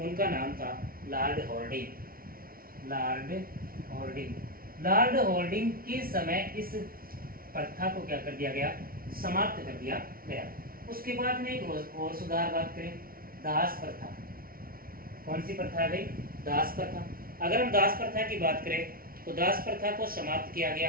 नाम था Lord Harding. Lord Harding. Lord Harding के समय इस प्रथा को क्या कर दिया गया? समाप्त कर दिया गया। उसके बाद में एक और सुधार बात करें, दास प्रथा। कौन सी प्रथा है भाई? दास प्रथा। अगर हम दास प्रथा की बात करें तो दास प्रथा को समाप्त किया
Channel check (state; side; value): late; left; 0.43 ms